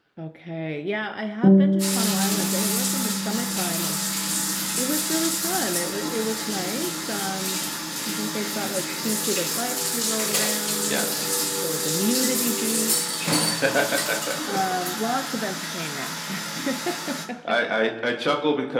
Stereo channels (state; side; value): identical; both; correlation 1.00